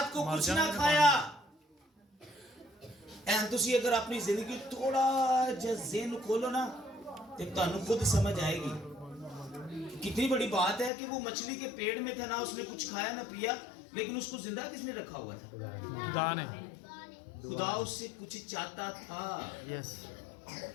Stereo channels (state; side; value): drops out; right; at 10.9 s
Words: को कुछ ना खाया। तुसी अगर अपनी जिंदगी थोड़ा जिहा ज़हन खोलो ना, तो तुहानू खुद समझ आएगी कितनी बड़ी बात है कि वो मछली के पेट में था, ना उसने कुछ खाया ना पिया, लेकिन उसको जिंदा किसने रखा हुआ था? खुदा ने। खुदा उससे कुछ चाहता था। यस।